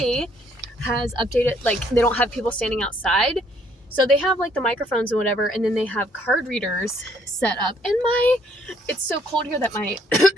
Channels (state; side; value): normal; both; correlation 0.66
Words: has updated, like, they don't have people standing outside, so they have like the microphones and whatever, and then they have card readers set up, and it's so cold here that my